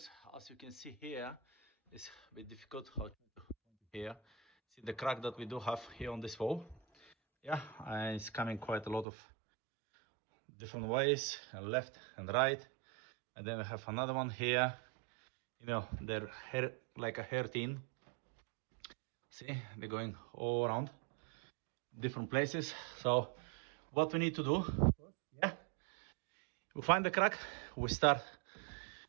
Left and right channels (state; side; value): drops out; left; at 9.1 s